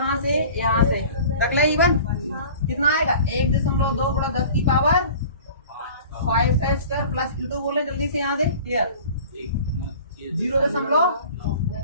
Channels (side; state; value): both; inverted; correlation -0.43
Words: से, यहाँ से तक ले, E1 कितना आएगा, 1.2 गुणा 10 की पावर 5 का स्क्वायर प्लस E2 बोले जल्दी से यहाँ से, क्लियर, 0.5